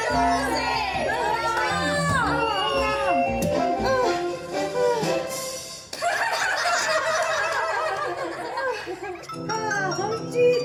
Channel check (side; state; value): both; identical; correlation 1.00